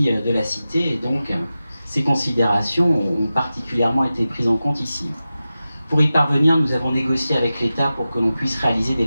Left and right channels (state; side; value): inverted; both; correlation -0.94